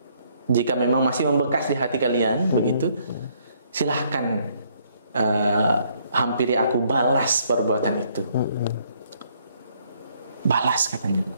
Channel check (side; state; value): both; inverted; correlation -0.68